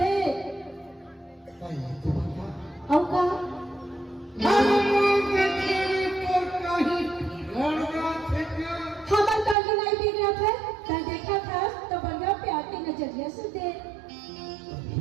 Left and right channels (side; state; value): left; drops out; at 9.6 s